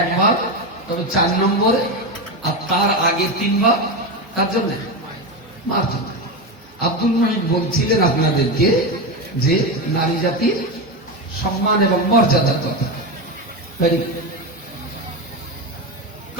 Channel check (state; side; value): normal; both; correlation 0.16